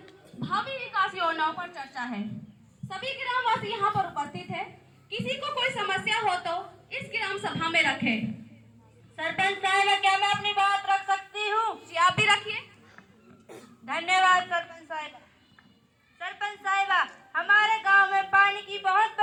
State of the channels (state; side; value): identical; both; correlation 1.00